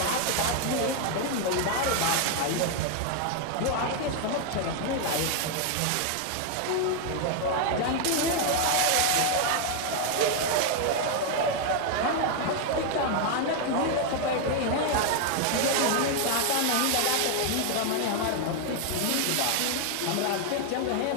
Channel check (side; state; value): both; different; correlation 0.00